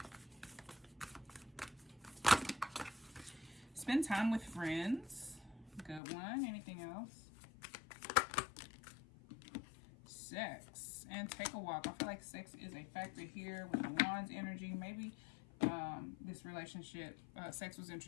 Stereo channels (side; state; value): right; drops out; at 6.0 s